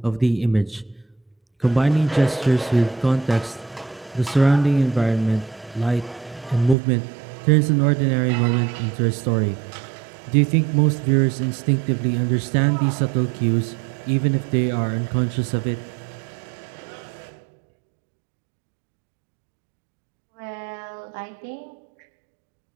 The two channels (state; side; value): drops out; left; at 6.8 s